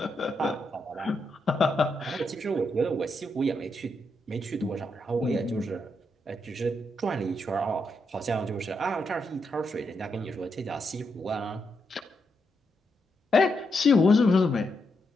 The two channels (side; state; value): both; normal; correlation 0.82